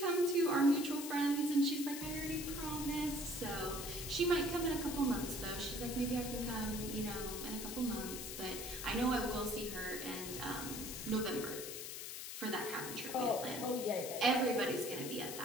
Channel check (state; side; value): noise; left; hiss, 7 dB below the sound